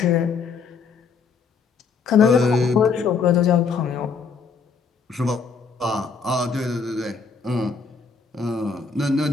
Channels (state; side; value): quieter; right; 5.3 dB